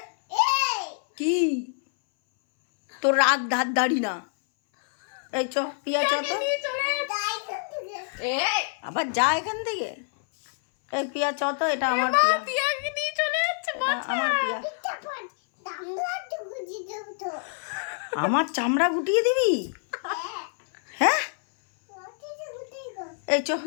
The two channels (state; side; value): silent; right; 59 dB below the other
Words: কি তোর রাগ ধার দাড়ি না? এই চ পিয়া চ তো, আবার যা এখান থেকে। এই পিয়া চ তো, এটা আমার পিয়া, পিয়াকে নিয়ে চলে যাচ্ছে। আমার পিয়া। আমার চামড়া গুটিয়ে দিবি? হ্যাঁ এই চ,